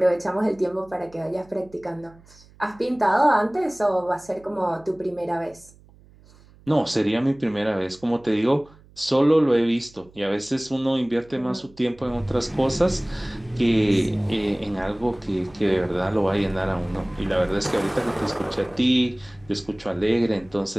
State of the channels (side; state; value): right; noise; hum, 26 dB below the sound